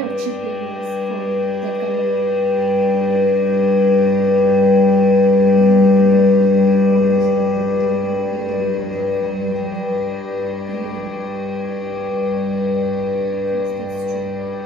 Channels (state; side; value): normal; both; correlation 0.64